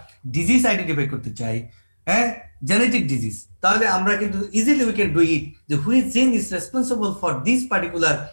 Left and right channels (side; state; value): both; inverted; correlation -1.00